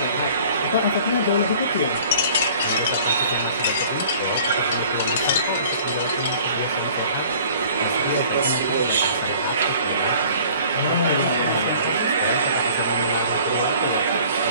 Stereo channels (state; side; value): inverted; both; correlation -0.50